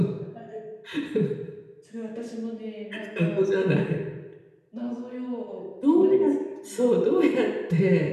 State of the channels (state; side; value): identical; both; correlation 1.00